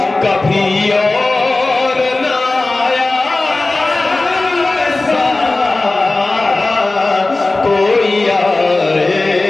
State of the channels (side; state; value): right; quieter; 3.1 dB